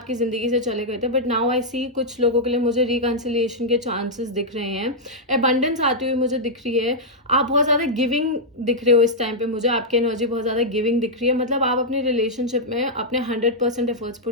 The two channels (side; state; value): both; normal; correlation -0.07